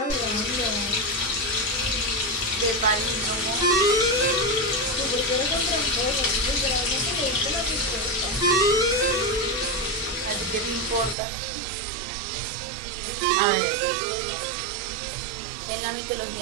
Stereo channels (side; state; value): left; drops out; at 11.2 s